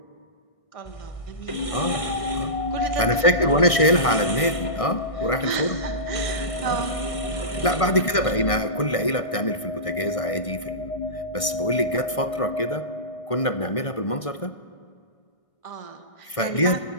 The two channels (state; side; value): late; right; 1.6 ms